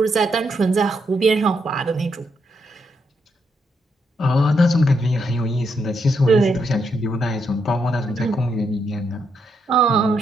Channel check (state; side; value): normal; both; correlation 0.79